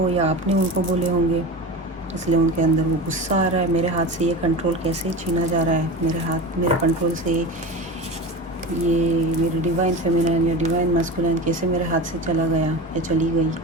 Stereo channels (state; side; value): normal; both; correlation 0.29